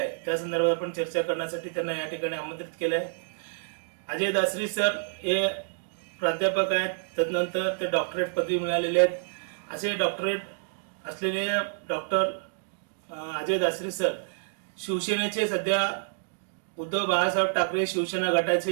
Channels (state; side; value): silent; left; digital silence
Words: त्या संदर्भात आपण चर्चा करण्यासाठी त्यांना या ठिकाणी आमंत्रित केलं आहे. अजय दासरी सर हे प्राध्यापक आहेत, तदनंतर ते डॉक्टरेट पदवी मिळालेले आहेत. असे डॉक्टरेट असलेले डॉक्टर अजय दासरी सर शिवसेनेचे सध्या उद्धव बाळासाहेब ठाकरे शिवसेना